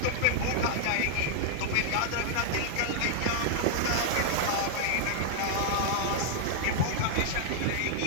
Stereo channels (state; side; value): different; both; correlation -0.01